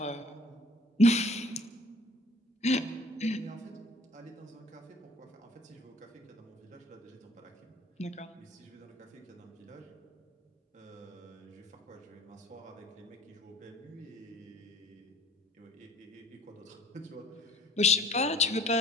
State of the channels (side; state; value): both; normal; correlation 0.53